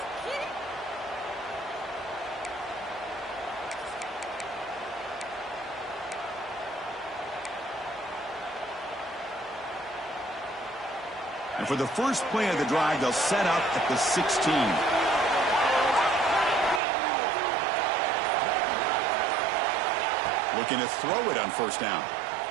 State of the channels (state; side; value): drops out; left; at 16.8 s